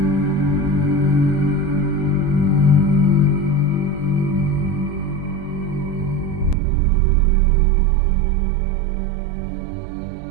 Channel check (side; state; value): left; drops out; at 6.6 s